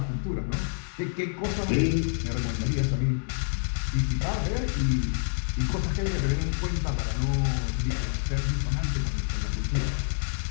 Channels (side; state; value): right; silent; digital silence